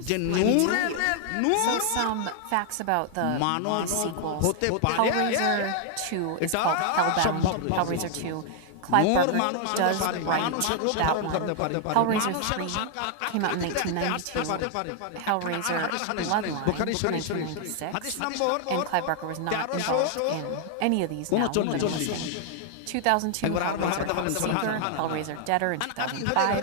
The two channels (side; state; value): both; different; correlation 0.00